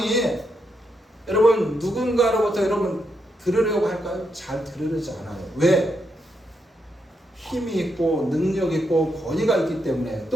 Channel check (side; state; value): both; normal; correlation 0.81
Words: 여러분 누군가로부터 여러분 들으려고 할까요? 잘 들으려지 않아요. 왜? 힘이 있고 능력이 있고 권위가 있기 때문에,